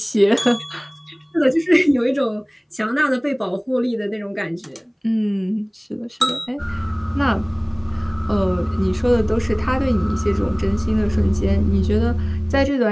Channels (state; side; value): identical; both; correlation 1.00